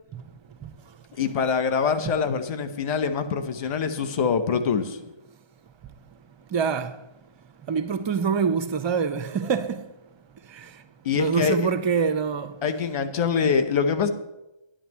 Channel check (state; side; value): late; left; 1.3 ms